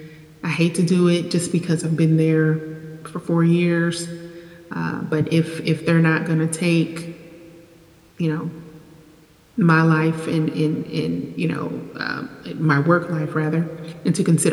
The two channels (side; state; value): both; identical; correlation 1.00